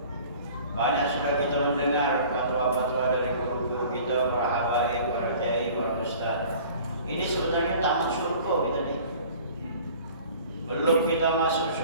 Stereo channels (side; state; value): both; inverted; correlation -0.47